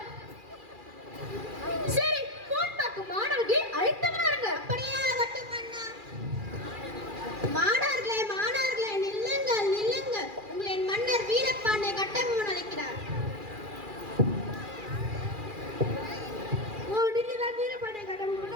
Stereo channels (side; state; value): left; late; 2.4 ms